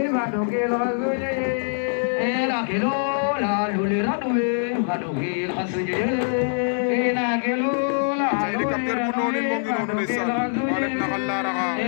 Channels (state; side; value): silent; right; digital silence